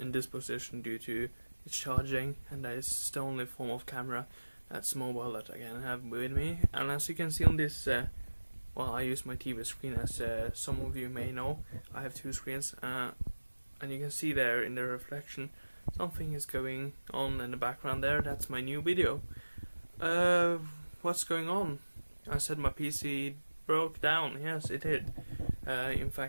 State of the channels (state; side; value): inverted; both; correlation -1.00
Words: this position due to its charging, and that is the only form of camera that's mobile that I can have with me. And as you can see on this, I use my TV screen, as some of you may know. I have two screens, and you can see there in the reflection something is going on in the background there. That's my new video. What's going on? I said my PC broke down. Yes, it did. In